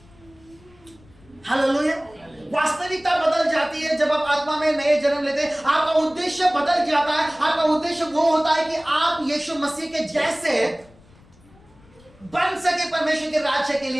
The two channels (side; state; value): left; noise; rumble, 27 dB below the sound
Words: हालेलुया। वास्तविकता बदल जाती है जब आप आत्मा में नए जन्म लेते हैं। आपका उद्देश्य बदल जाता है। आपका उद्देश्य वो होता है कि आप यीशु मसीह के जैसे बन सके परमेश्वर के राज्य के